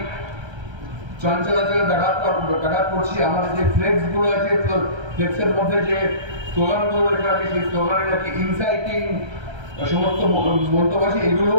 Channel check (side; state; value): left; late; 1.3 ms